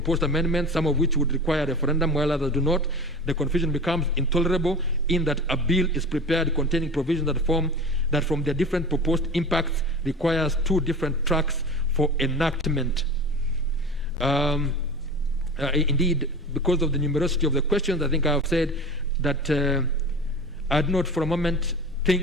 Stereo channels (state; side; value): normal; both; correlation 0.34